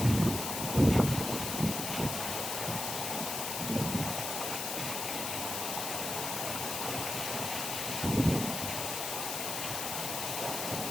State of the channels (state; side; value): noise; left; hiss, 3 dB below the sound